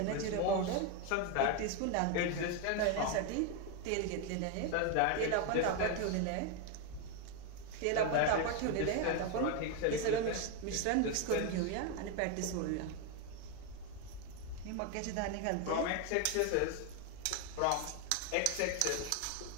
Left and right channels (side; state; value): both; different; correlation 0.01